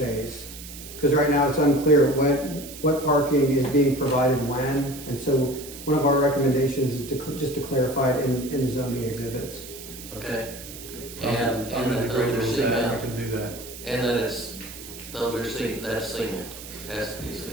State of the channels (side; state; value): right; noise; hiss, 14 dB below the sound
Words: Because right now it's unclear what parking is being provided when, and so one of our recommendations is just to clarify it in the zoning exhibits. Okay. I'm And in that agreement those are with that, I cement, can do that. and that that's cement, has to be